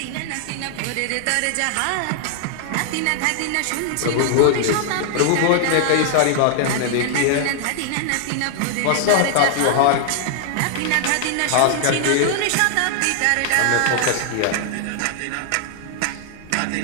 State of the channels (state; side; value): different; both; correlation 0.00